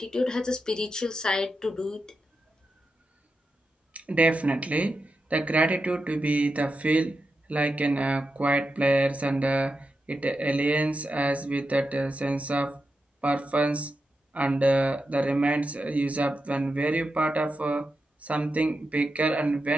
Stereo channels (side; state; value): both; normal; correlation 0.88